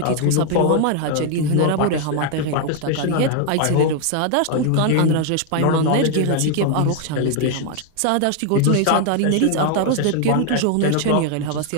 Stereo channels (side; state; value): both; different; correlation 0.00